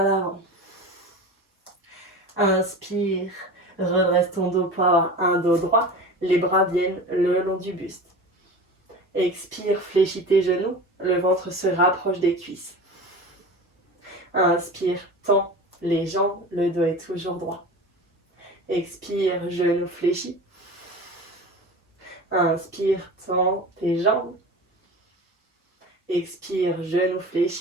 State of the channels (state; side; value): normal; both; correlation 0.33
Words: l'avant. Inspire, redresse ton dos pour avoir un dos droit. Les bras viennent le long du buste. Expire, fléchis tes genoux. Le ventre se rapproche des cuisses. Inspire, tends les jambes. Le dos est toujours droit. Expire, genoux fléchis. Inspire, tends tes jambes. Expire, genoux